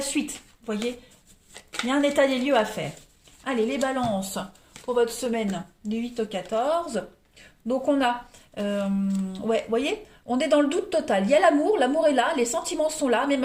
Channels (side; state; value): both; identical; correlation 1.00